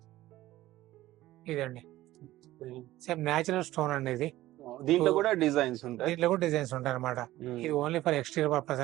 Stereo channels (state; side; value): quieter; left; 15.9 dB